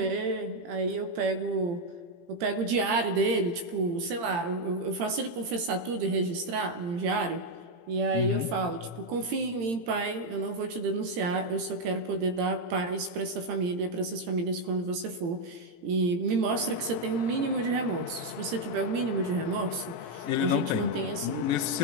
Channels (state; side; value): late; left; 18 ms